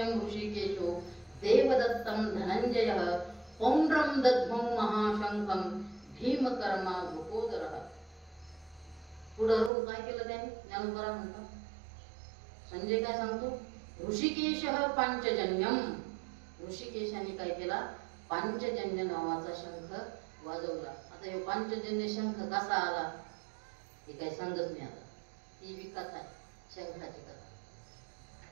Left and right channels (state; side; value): drops out; left; at 9.7 s